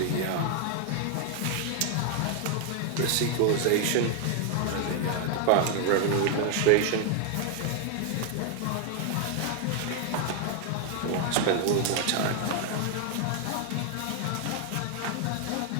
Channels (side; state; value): both; different; correlation 0.01